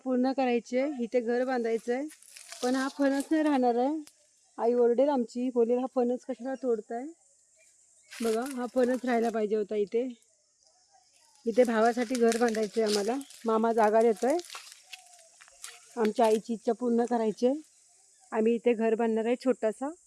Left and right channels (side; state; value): both; identical; correlation 1.00